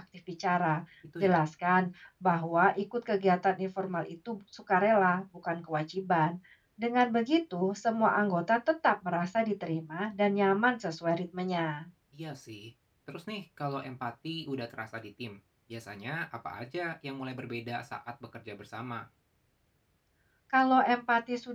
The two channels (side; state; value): both; identical; correlation 1.00